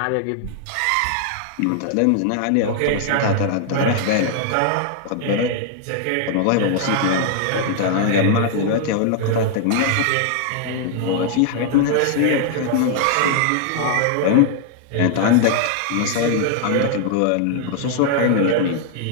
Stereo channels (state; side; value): different; both; correlation 0.00